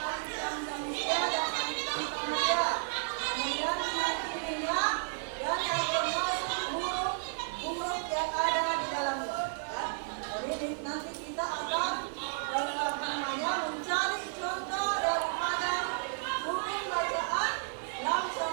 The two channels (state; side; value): silent; left; digital silence